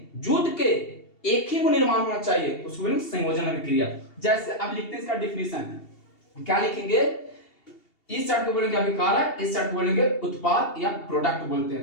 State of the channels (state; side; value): late; right; 2.8 ms